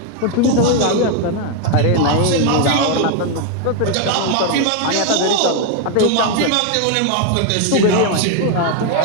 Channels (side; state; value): both; different; correlation 0.01